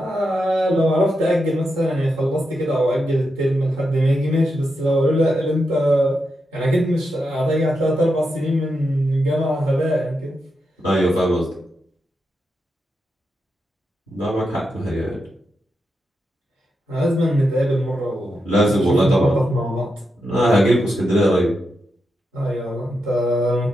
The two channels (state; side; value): normal; both; correlation 0.86